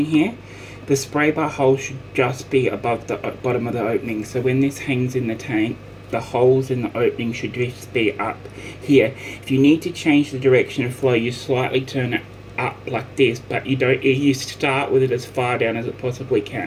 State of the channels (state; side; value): identical; both; correlation 1.00